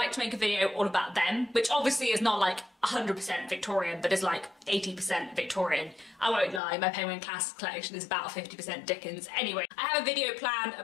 to make a video all about them, which obviously is not like 100% Victorian, but is like 80% Victorian. I won't lie, my Penguin Classics collection is about 50% Dickens. Anyway, I have a video planned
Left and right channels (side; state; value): right; drops out; at 6.6 s